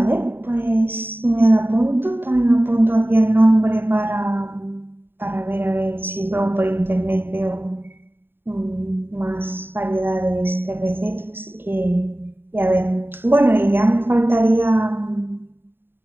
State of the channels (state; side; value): late; left; 0.10 ms